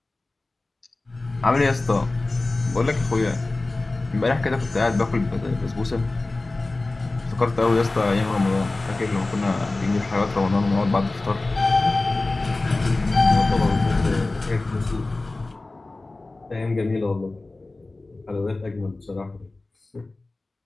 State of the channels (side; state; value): right; quieter; 3.1 dB